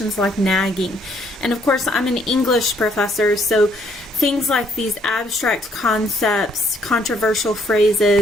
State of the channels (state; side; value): normal; both; correlation 0.67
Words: like nagging. And of course, I'm an English professor, so things like these abstract concepts, controversial